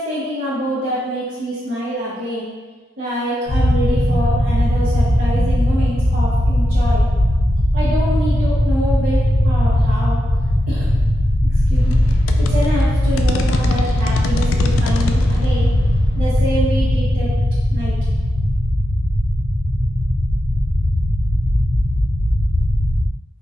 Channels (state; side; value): normal; both; correlation 0.88